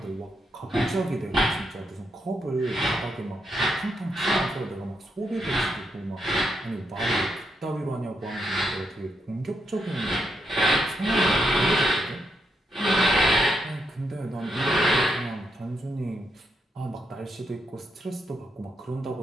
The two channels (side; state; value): both; normal; correlation 0.80